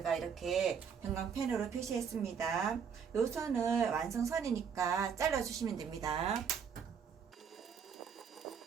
이렇게 형광펜으로 표시했습니다. 요 선을 완성선이니까 잘라주시면 됩니다.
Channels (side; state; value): left; quieter; 6.8 dB